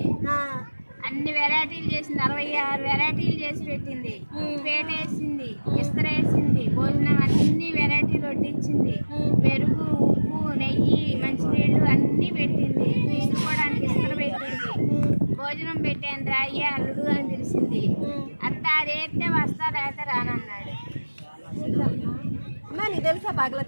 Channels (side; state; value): both; inverted; correlation -1.00